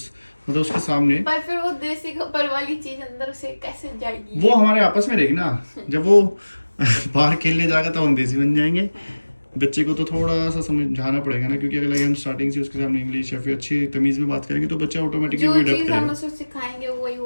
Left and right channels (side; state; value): both; inverted; correlation -1.00